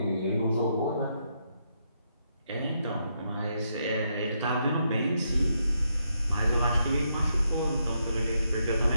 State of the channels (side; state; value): both; inverted; correlation -0.79